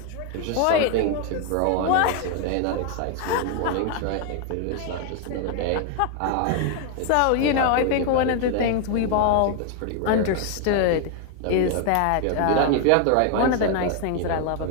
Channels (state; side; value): different; both; correlation 0.00